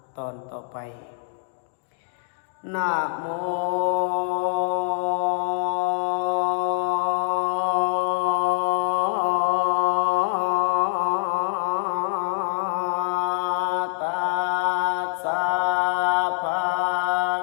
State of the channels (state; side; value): silent; right; digital silence